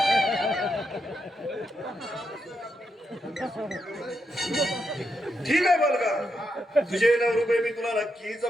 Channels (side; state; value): both; normal; correlation 0.82